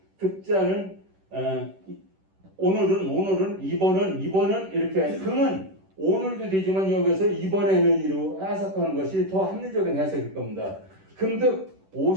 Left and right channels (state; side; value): late; left; 10 ms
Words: 오늘은 이번은 이렇게 금은 오늘도 되지만 여기서 이번에는 이로 해석하는 것이 더 합리적인 해석일 겁니다. 금득